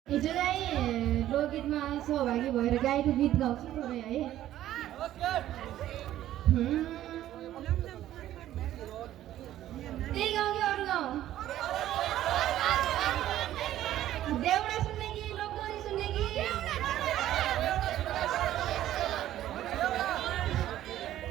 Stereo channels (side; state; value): left; quieter; 13.0 dB